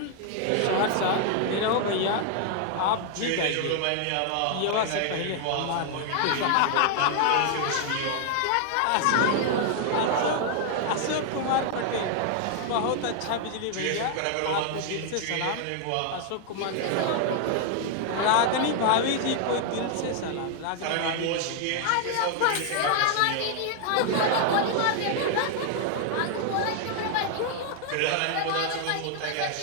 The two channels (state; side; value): different; both; correlation 0.00